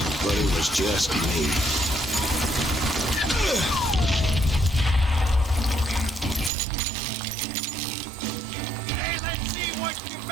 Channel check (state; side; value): drops out; left; at 6.5 s